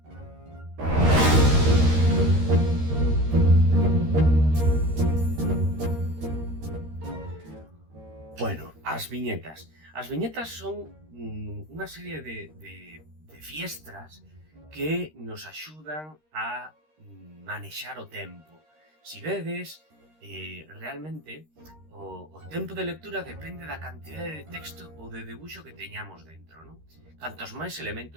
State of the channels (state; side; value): late; left; 13 ms